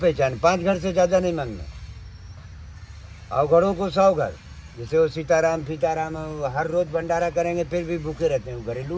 5 घर से ज्यादा नहीं मांगना। अवघड़ों को 100 घर, जैसे वो सीताराम फीताराम हर रोज भंडारा करेंगे फिर भी भूखे रहते हैं, वो घरेलू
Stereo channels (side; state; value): both; identical; correlation 1.00